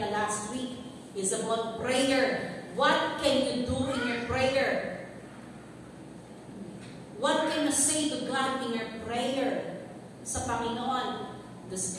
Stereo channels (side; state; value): both; identical; correlation 1.00